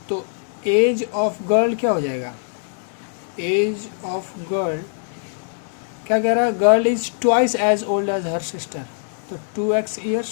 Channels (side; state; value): right; silent; digital silence